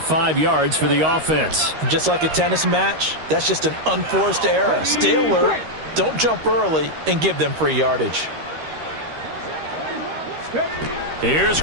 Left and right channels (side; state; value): left; late; 13 ms